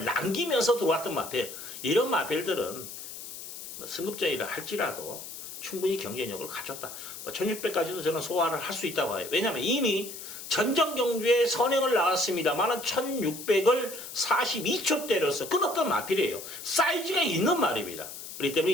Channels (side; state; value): left; noise; hiss, 11 dB below the sound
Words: 남기면서 들어왔던 마필. 이런 마필들은 승급자일을 할지라도 충분히 경쟁력을 가졌다. 1600까지도 저는 소화를 할 수 있다고 봐요. 왜냐하면 이미 전정 경주에 선행을 나왔습니다만 1600을 42초 때려서 끊었던 마필이에요. 사이즈가 있는 말입니다. 그렇기 때문에